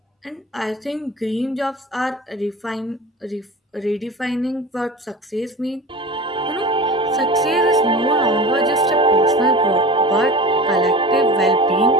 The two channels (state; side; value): normal; both; correlation 0.34